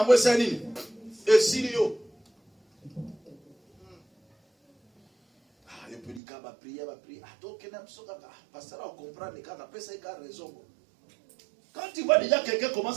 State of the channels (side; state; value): left; drops out; at 6.2 s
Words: mwesani. Et Sirio. Ah, il peut dire qu'il va prier, va prier. Ah, donc, parce que là, on comprend les cas, après ça, il a raison. Quand tu vois déjà quelqu'un